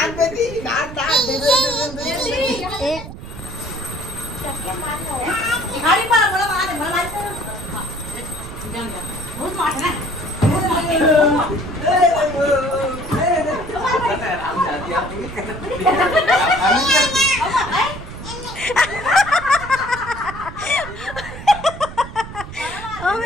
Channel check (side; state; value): right; noise; rumble, 12 dB below the sound